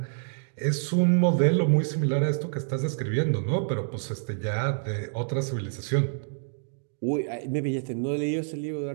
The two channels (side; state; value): left; silent; digital silence